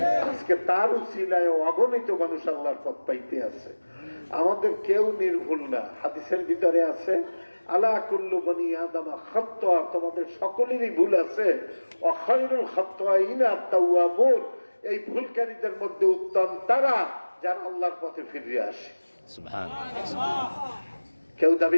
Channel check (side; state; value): both; inverted; correlation -1.00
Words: আজকে তার উসিলায় অগণিত মানুষ আল্লাহর পথ পাইতে আছে। আমাদের কেউ নির্ভুল না। হাদিসের ভিতরে আছে আলা কুল্লু বনি আদম খাত্তা, তোমাদের সকলেরই ভুল আছে, ওয়া খায়রুল খাত্তাইনা আত-তাওয়াবুন, এই ভুলকারীদের মধ্যে উত্তম তারা যারা আল্লাহর পথে ফিরে আসে। সুবহানাল্লাহ। কেউ